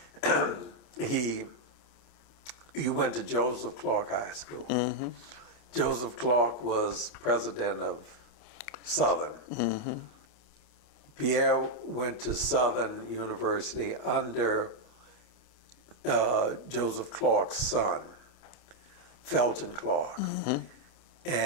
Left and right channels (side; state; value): right; late; 28 ms